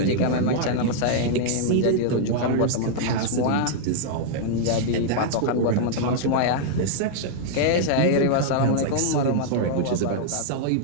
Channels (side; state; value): both; different; correlation -0.01